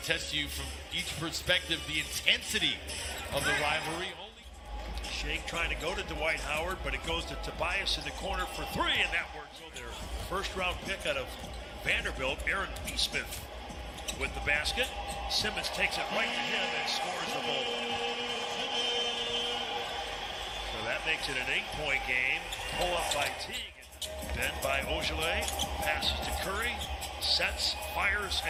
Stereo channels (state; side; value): identical; both; correlation 1.00